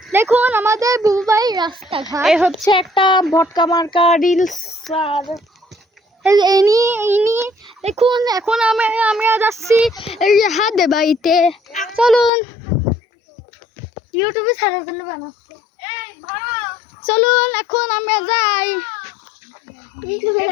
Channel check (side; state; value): right; drops out; at 12.3 s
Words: দেখুন আমাদের বুবাই রাস্তাঘাট। এই হচ্ছে একটা ভটকা মার্কা রিলস। আর ইনি দেখুন এখন আমরা যাচ্ছি এই যে হাতে বাড়িতে। চলুন, ইউটিউবে ছাড়ার জন্য বানাচ্ছে। চলুন এখন আমরা যাই।